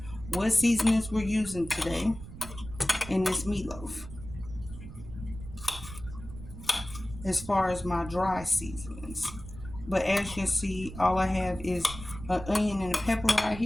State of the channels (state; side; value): noise; right; rumble, 13 dB below the sound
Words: what seasonings we're using today in this meatloaf. As far as my dry seasonings. But as you can see, all I have is an onion and a pepper right